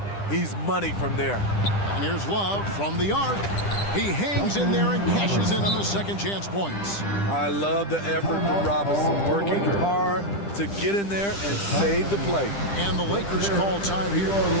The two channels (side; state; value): right; late; 10 ms